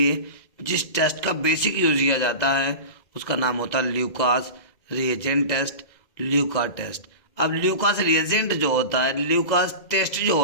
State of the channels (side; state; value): right; late; 2.0 ms